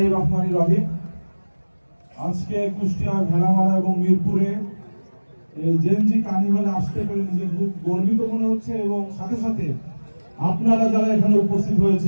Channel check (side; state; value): both; inverted; correlation -1.00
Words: রহমানির রহিম। আজকে কুষ্টিয়া, ভেড়ামারা এবং মিরপুরে এই জেনজি কার্নিভালে আসতে পেরে নিজের খুব গর্বিত মনে হচ্ছে, এবং সাথে সাথে আপনারা যারা এখানে উপস্থিত